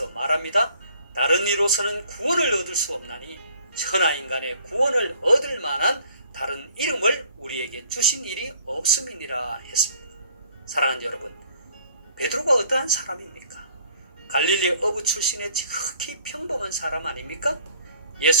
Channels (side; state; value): both; inverted; correlation -0.57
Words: 말합니다. 다른 이로서는 구원을 얻을 수 없나니 천하 인간의 구원을 얻을 만한 다른 이름을 우리에게 주신 일이 없음이니라 했습니다. 사랑하는 여러분, 베드로가 어떠한 사람입니까? 갈릴리 어부 출신의 지극히 평범한 사람 아닙니까?